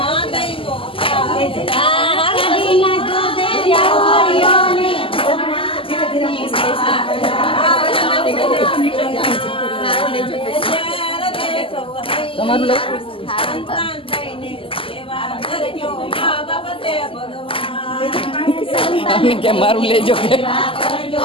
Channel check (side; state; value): right; late; 0.26 ms